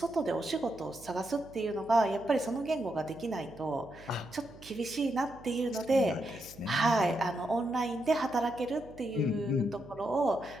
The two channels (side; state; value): right; noise; hum, 20 dB below the sound